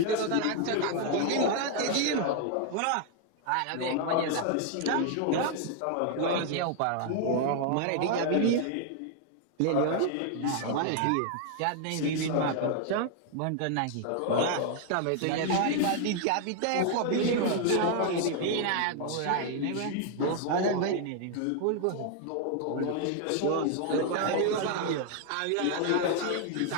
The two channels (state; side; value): different; both; correlation 0.00